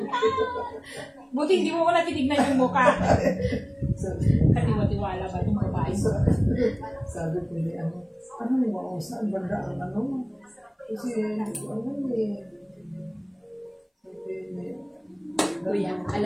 Buti hindi mo ko natinignan yung mukha. Katiwa-tiwala ba itong babae? Sabi ko ni ano mo, saan banda ang ano mo? Kasi ano eh. Kuya,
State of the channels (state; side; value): identical; both; correlation 1.00